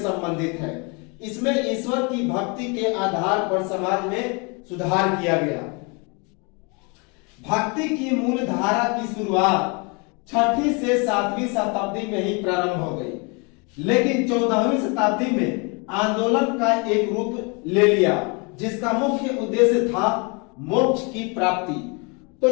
है। इसमें ईश्वर की भक्ति के आधार पर समाज में सुधार किया गया। भक्ति की मूल धारा की शुरुआत 6वीं से 7वीं शताब्दी में ही प्रारंभ हो गई, लेकिन 14वीं शताब्दी में आंदोलन का एक रूप ले लिया, जिसका मुख्य उद्देश्य था मोक्ष की प्राप्ति। तो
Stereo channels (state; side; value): quieter; right; 31.8 dB